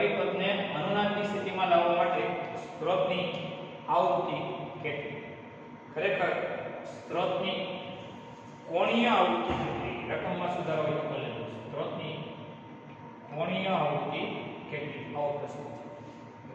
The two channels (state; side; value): identical; both; correlation 1.00